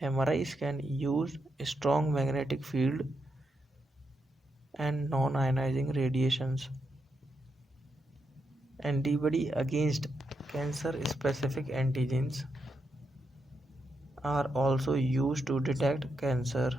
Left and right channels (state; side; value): normal; both; correlation 0.83